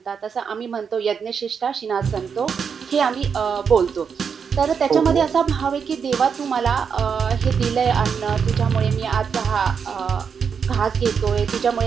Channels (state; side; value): quieter; left; 6.5 dB